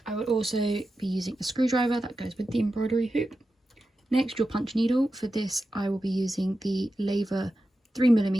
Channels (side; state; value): both; normal; correlation 0.91